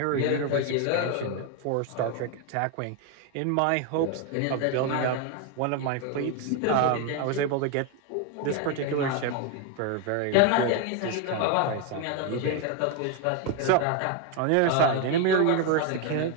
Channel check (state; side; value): different; both; correlation 0.01